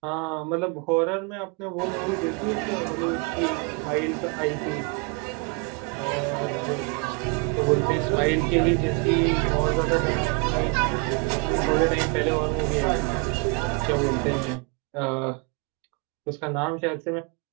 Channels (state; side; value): quieter; left; 30.8 dB